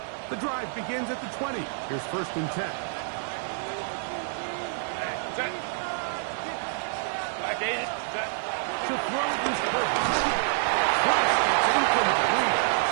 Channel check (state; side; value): silent; left; 57 dB below the other